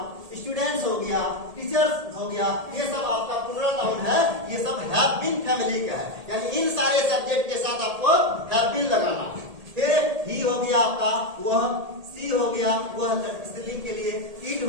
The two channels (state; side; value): late; left; 1.7 ms